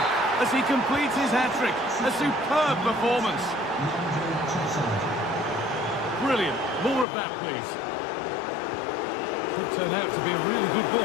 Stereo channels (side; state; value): right; drops out; at 7.1 s